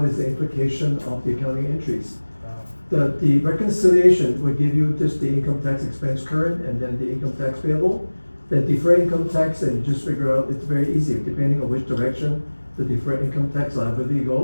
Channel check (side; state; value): both; inverted; correlation -1.00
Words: is the implication of the accounting entries. The reconciliation will give you just the income tax expense current and then the income tax payable. The deferred income tax, and you just figure out, it's very easy, depending on which direction the deferred income tax liability